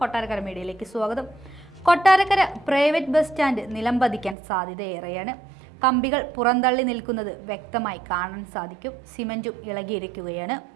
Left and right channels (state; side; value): drops out; left; at 4.4 s